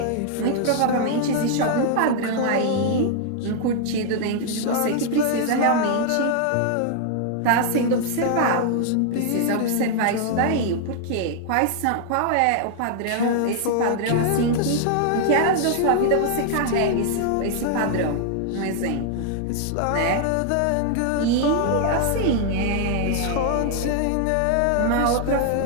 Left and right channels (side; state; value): both; different; correlation 0.00